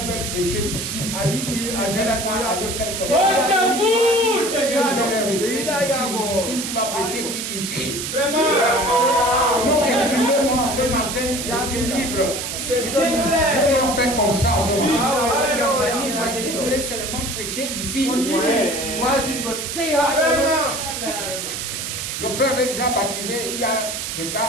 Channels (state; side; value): noise; right; hiss, 5 dB below the sound